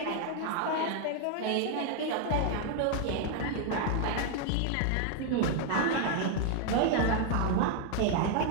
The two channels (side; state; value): both; different; correlation 0.00